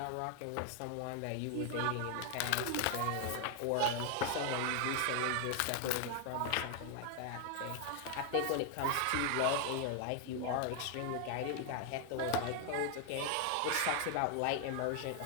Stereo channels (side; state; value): both; different; correlation 0.00